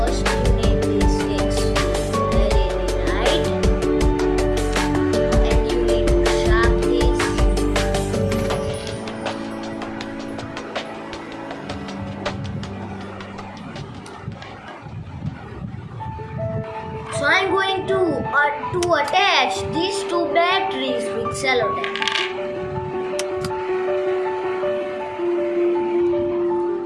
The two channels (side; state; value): both; identical; correlation 1.00